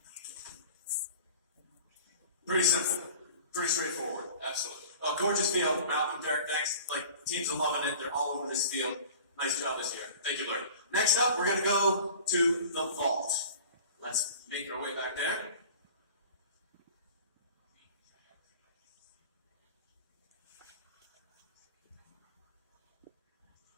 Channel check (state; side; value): inverted; both; correlation -0.43